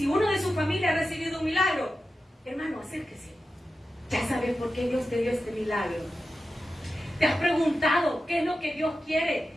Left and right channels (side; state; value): both; normal; correlation 0.92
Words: uno de su familia ha recibido un milagro, hermano, acérquese. Ya sabes por qué Dios te dio este milagro. ¿Te has preguntado qué es lo que Dios quiere